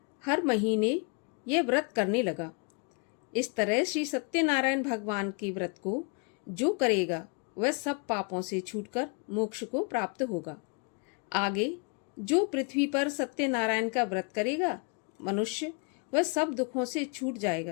हर महीने यह व्रत करने लगा। इस तरह श्री सत्यनारायण भगवान के व्रत को जो करेगा वह सब पापों से छूटकर मोक्ष को प्राप्त होगा। आगे जो पृथ्वी पर सत्यनारायण का व्रत करेगा मनुष्य, वह सब दुखों से छूट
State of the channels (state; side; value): quieter; right; 35.3 dB